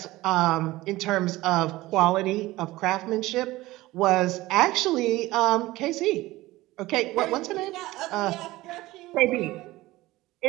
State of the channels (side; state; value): left; quieter; 18.3 dB